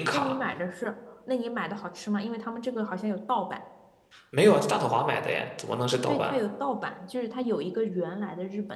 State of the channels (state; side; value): identical; both; correlation 1.00